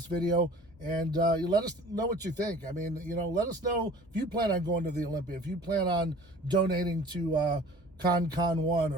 video, and you let us know what you think. I mean, let us know if you plan on going to the Olympia, if you plan on donating to Con 1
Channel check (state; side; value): normal; both; correlation 0.46